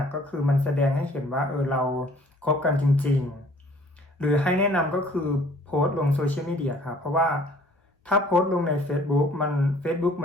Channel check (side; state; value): both; normal; correlation 0.55